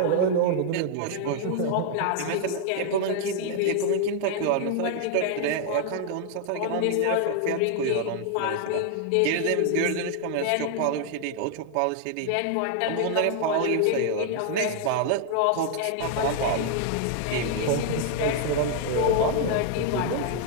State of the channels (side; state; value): both; different; correlation 0.00